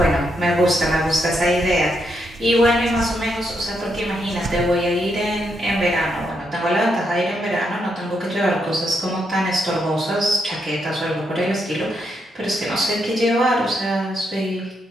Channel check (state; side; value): normal; both; correlation 0.79